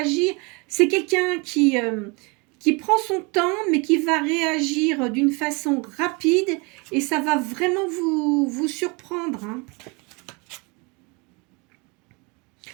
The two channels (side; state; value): left; quieter; 29.4 dB